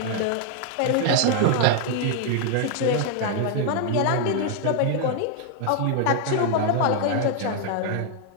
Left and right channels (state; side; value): different; both; correlation 0.00